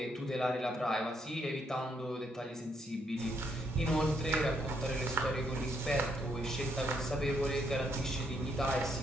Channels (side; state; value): both; normal; correlation 0.74